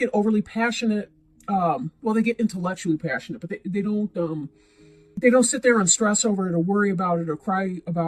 overly passionate well, they get intellectually passionate, but they don't sit there and stress over it or worry about it or cry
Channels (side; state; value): both; identical; correlation 1.00